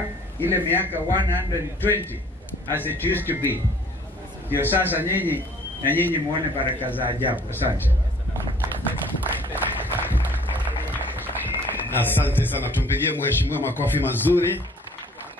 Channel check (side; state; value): both; normal; correlation 0.55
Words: ile miaka 120 as it used to be. Ndio sasa nyinyi muone baraka za ajabu. Asante. Asante sana. Tumpigie mheshimiwa makofi mazuri.